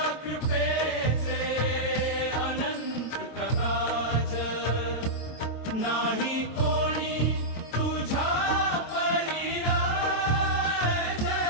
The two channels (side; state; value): right; late; 22 ms